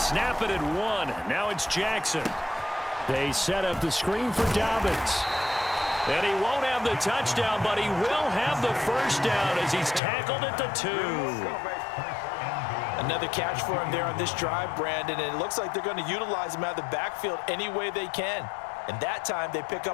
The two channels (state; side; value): drops out; right; at 10.0 s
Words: it at 1. Now it's Jackson. They set up the screen for Dobbins. And he won't have the touchdown, but he will have the first down as he's tackled at the 2. Another catch for him there on this drive, Brandon, and it looks like they're going to utilize him out of the backfield any way they can. And that time they pick